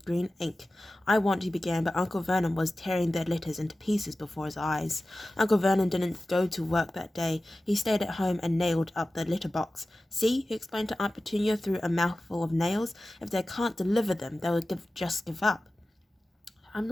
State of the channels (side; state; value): both; normal; correlation 0.95